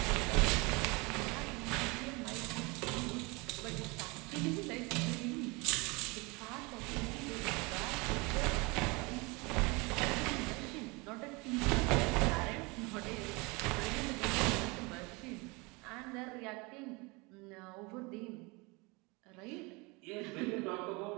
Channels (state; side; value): quieter; left; 26.9 dB